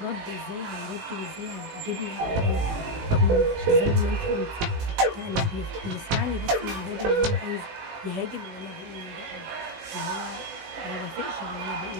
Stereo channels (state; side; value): late; left; 18 ms